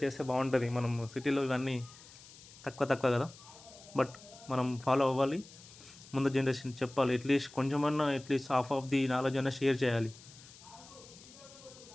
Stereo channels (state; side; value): noise; left; hiss, 20 dB below the sound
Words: చేస్తే బాగుంటుంది. మనం సిటీలో ఇవన్నీ తక్కువ కదా, బట్ మనం ఫాలో అవ్వాలి. ముందు జనరేషన్ చెప్పాలి, అట్లీస్ట్ కొంచెమన్నా, at least half of the knowledge అన్నా షేర్ చేయాలి.